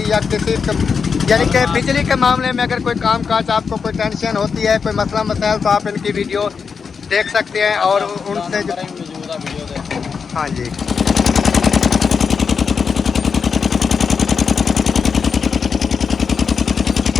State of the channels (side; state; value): right; quieter; 5.8 dB